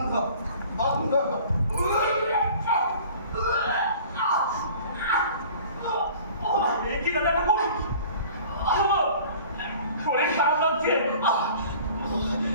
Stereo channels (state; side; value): inverted; both; correlation -0.46